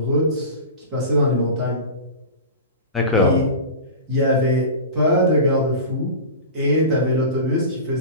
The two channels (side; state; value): both; inverted; correlation -0.30